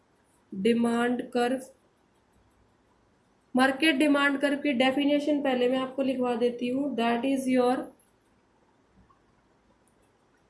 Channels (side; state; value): both; identical; correlation 1.00